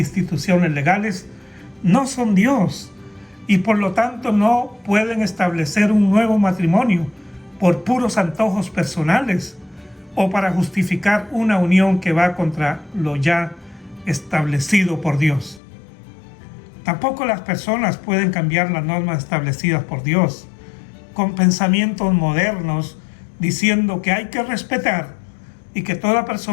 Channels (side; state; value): right; drops out; at 15.6 s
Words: legales, no son Dios y por lo tanto no pueden establecer un nuevo matrimonio por puros antojos personales o para justificar una unión que va contra lo ya establecido por Dios. Tampoco las personas pueden cambiar las normas establecidas por Dios, con pensamientos modernos diciendo que hay que respetar y que toda